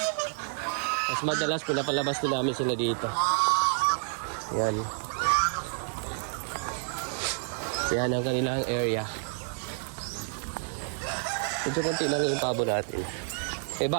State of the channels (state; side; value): silent; left; 58 dB below the other